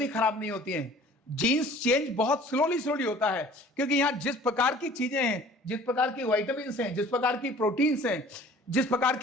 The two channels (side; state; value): both; normal; correlation 0.49